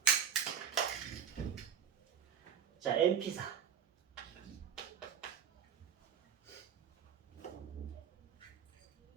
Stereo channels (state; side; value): quieter; left; 8.2 dB